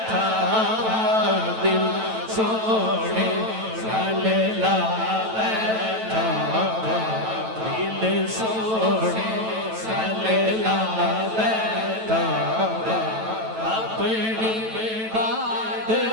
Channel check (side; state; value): left; late; 9.1 ms